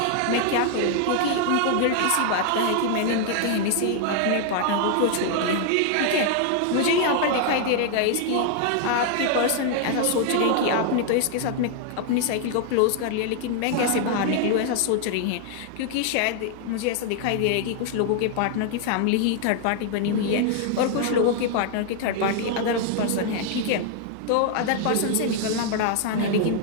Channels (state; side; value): different; both; correlation 0.00